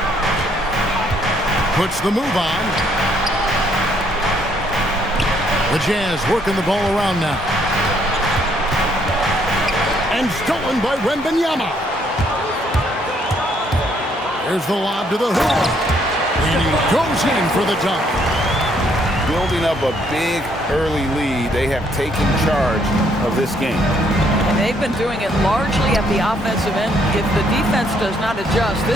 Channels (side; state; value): both; normal; correlation 0.69